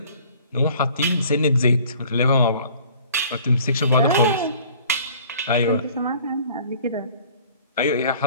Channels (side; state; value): both; inverted; correlation -0.52